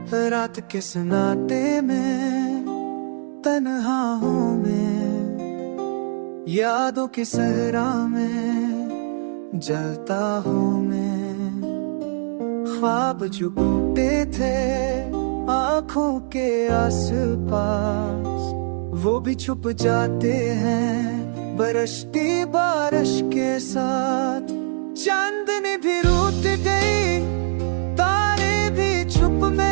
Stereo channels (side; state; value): left; silent; 64 dB below the other